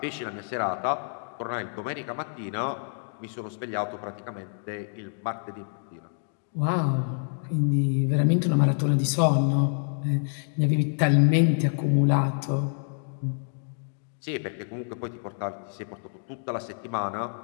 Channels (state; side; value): silent; right; digital silence